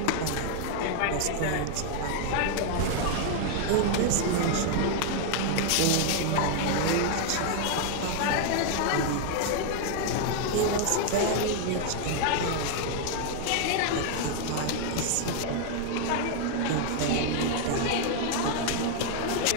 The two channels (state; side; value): different; both; correlation 0.00